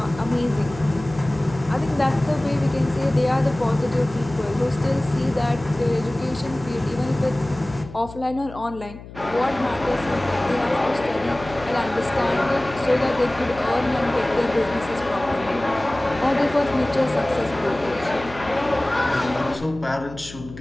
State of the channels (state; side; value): noise; left; hum, 15 dB below the sound